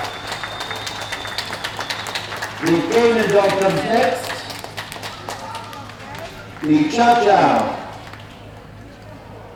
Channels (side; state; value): both; identical; correlation 1.00